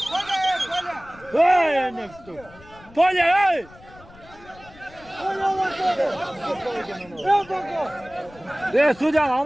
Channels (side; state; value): left; noise; rumble, 23 dB below the sound